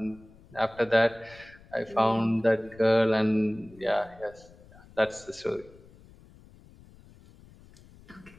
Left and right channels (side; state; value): left; noise; rumble, 24 dB below the sound